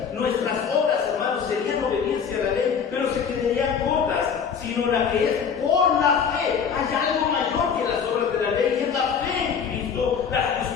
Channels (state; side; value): quieter; right; 6.8 dB